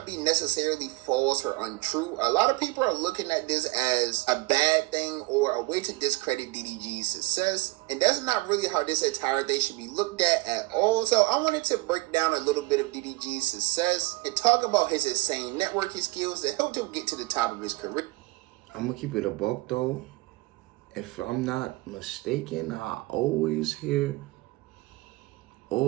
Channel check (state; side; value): quieter; left; 21.9 dB